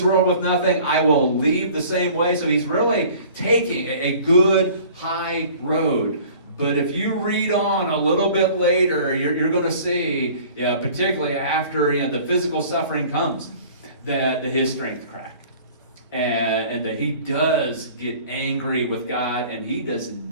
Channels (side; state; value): both; inverted; correlation -0.48